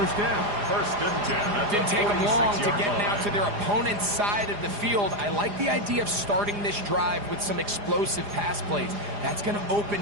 down. 1st and 10. Didn't take them long to get now to their opponent's side of the field. I like the idea of starting this drive with some explosive pass plays. That's going to open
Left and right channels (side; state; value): left; late; 4.9 ms